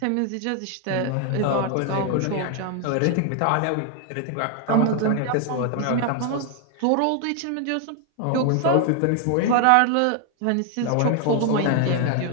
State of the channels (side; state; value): both; different; correlation 0.00